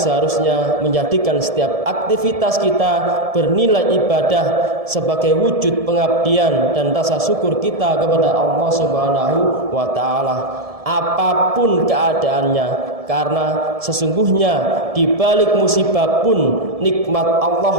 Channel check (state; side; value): late; left; 1.7 ms